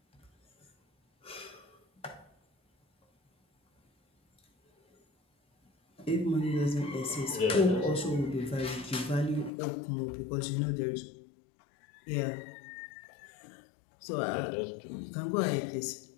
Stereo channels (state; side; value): drops out; right; at 9.5 s